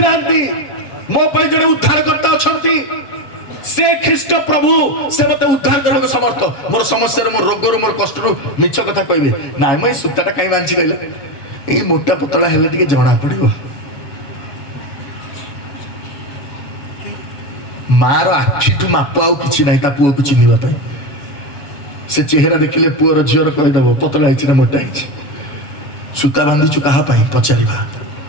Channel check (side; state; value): right; late; 7.1 ms